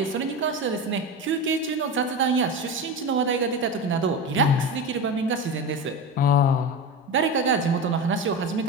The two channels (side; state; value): both; normal; correlation 0.23